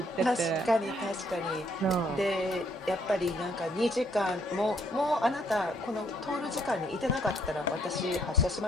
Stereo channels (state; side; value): normal; both; correlation 0.68